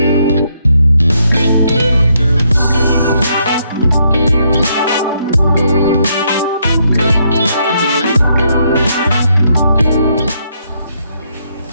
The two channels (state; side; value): inverted; both; correlation -0.74